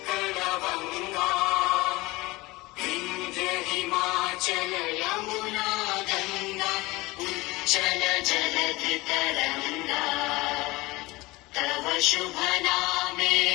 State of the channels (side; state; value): right; quieter; 21.5 dB